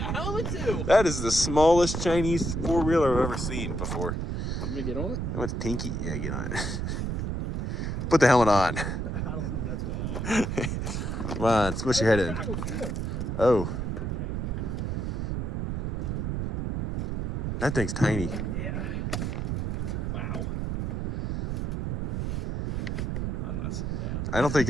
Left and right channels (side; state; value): right; noise; rumble, 1 dB below the sound